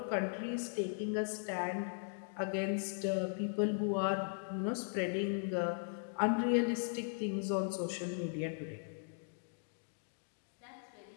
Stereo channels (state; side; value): silent; right; digital silence